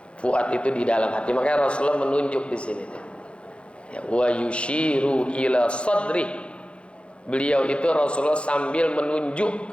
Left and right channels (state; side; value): late; right; 0.059 ms